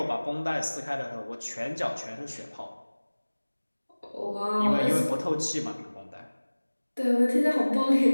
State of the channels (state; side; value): inverted; both; correlation -1.00